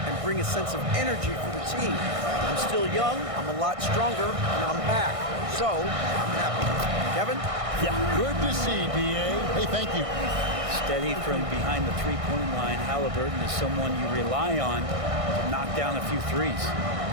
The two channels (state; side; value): late; left; 1.6 ms